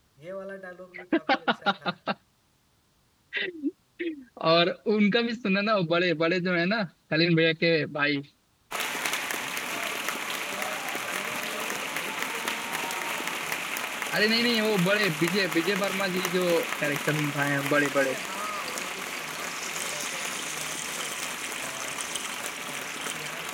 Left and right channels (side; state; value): both; identical; correlation 1.00